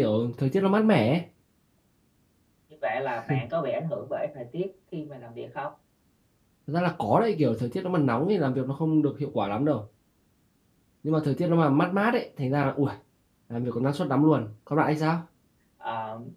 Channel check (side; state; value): both; identical; correlation 1.00